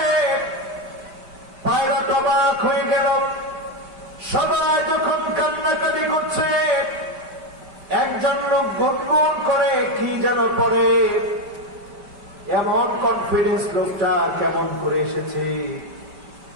পাইলট অবাক হয়ে গেল। সবাই যখন কান্নাকাটি করছে, একজন লোক গুনগুন করে কি যেন পড়ে। এমন কনফিডেন্স লোকটার কেমন করে এসেছে?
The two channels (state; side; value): late; left; 5.1 ms